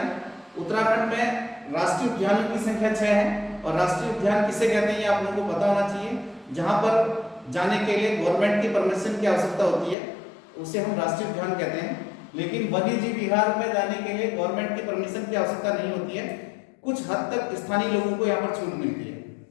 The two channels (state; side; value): drops out; right; at 10.0 s